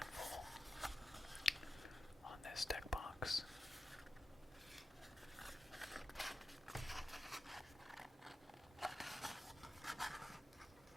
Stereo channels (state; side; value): normal; both; correlation 0.92